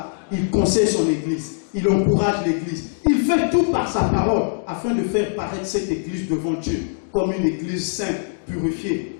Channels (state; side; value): silent; right; digital silence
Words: Il conseille son Église. Il encourage l'Église. Il fait tout par sa parole afin de faire paraître cette Église devant Dieu comme une Église sainte, purifiée,